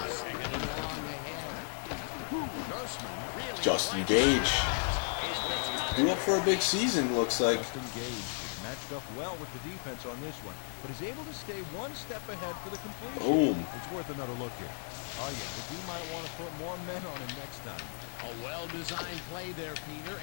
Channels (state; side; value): silent; right; 55 dB below the other